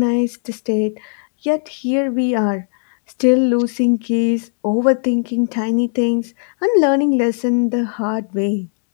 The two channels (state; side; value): silent; right; digital silence